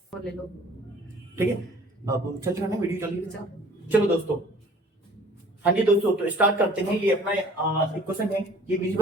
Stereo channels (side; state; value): both; normal; correlation 0.52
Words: और ले लो। ठीक है। अब चल रहा है वीडियो, चलिए अच्छा। चलो दोस्तों, हाँ जी दोस्तों, तो स्टार्ट करते हैं। ये अपना एक क्वेश्चन है, ये